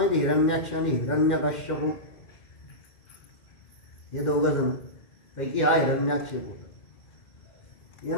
हिरण्याक्ष आणि हिरण्यकश्यप हे दोघं जण पैकी हा हिरण्याक्ष होता.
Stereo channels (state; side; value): late; right; 2.1 ms